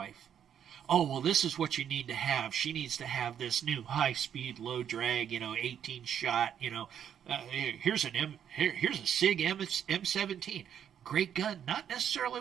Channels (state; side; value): quieter; left; 9.1 dB